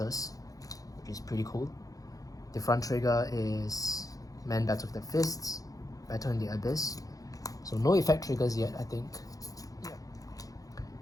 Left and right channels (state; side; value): late; right; 0.17 ms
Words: which is pretty cool. The front trigger is Man Battle with the Fists, Battle in the Abyss. So no effect triggers yet, I think. Yeah.